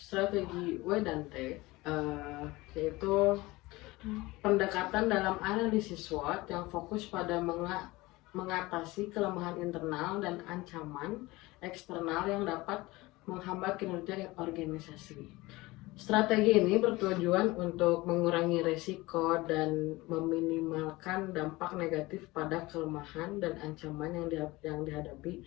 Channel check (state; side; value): quieter; right; 20.9 dB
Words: W dan T yaitu pendekatan dalam analisis SWOT yang fokus pada mengatasi kelemahan internal dan ancaman eksternal yang dapat menghambat kinerja organisasi. Strategi ini bertujuan untuk mengurangi risiko dan meminimalkan dampak negatif pada kelemahan dan ancaman yang dihadapi